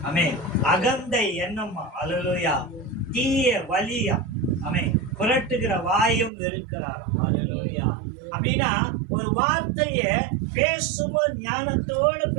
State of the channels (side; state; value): left; drops out; at 6.3 s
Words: ஆமென். அகந்தை எண்ணமா. அல்லேலூயா. தீய வலியா. ஆமென். புரட்டுகிற வாயும் இருக்கிறார். அல்லேலூயா. அப்படின்னா ஒரு வார்த்தைய பேசும்போது ஞானத்தோடு